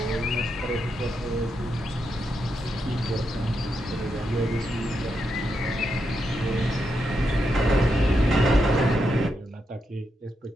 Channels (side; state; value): both; normal; correlation 0.83